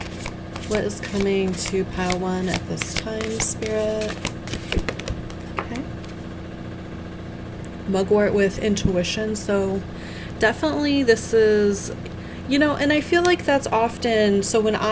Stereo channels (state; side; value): identical; both; correlation 1.00